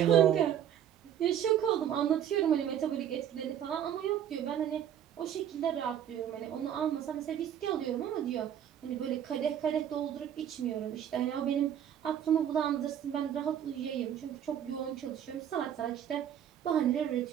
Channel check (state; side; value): quieter; left; 9.9 dB